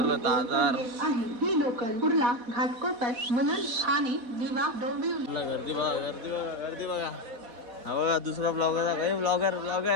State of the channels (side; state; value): left; late; 4.1 ms